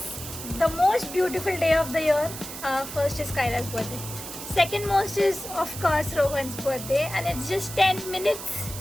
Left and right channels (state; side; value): noise; right; hiss, 10 dB below the sound